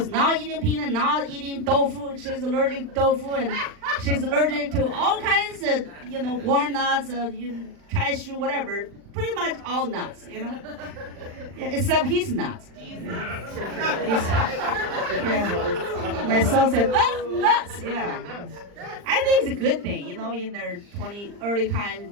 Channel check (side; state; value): left; late; 39 ms